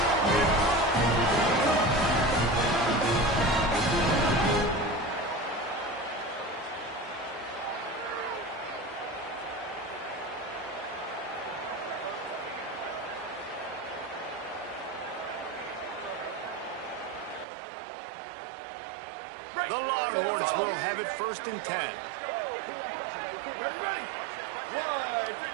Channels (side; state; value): left; drops out; at 17.4 s